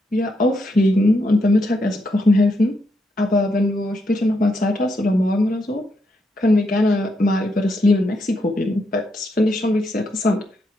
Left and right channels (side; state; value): both; normal; correlation 0.80